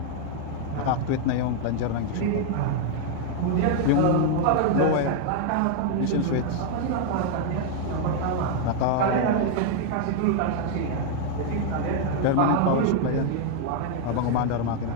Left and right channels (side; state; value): both; different; correlation 0.00